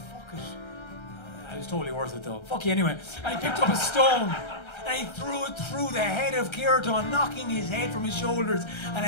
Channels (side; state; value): right; late; 1.3 ms